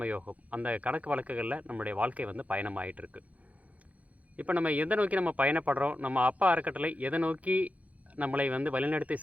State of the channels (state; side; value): late; left; 0.069 ms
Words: அந்த கணக்கு வழக்குகளில் நம்முடைய வாழ்க்கை பயணமாகிட்டு இருக்கு. இப்போ நம்ம எதை நோக்கி நம்ம பயணப்படுறோம், நம்ம அப்பா அறக்கட்டளை எதை நோக்கி நம்மளை வழிநடத்தி